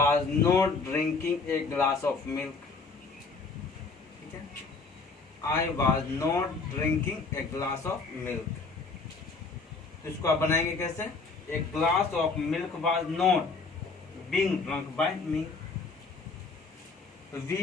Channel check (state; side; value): quieter; right; 4.2 dB